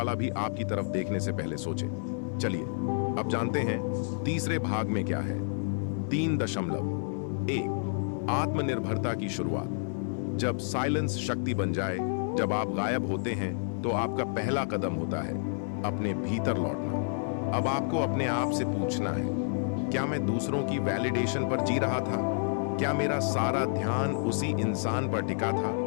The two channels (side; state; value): right; silent; digital silence